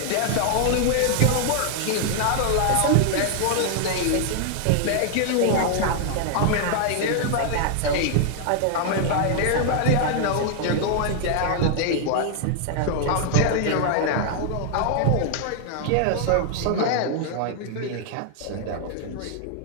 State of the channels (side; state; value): both; different; correlation 0.00